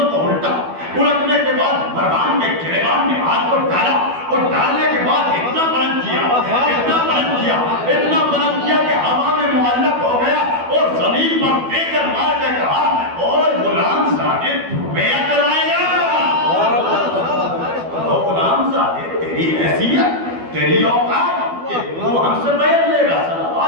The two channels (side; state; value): left; late; 12 ms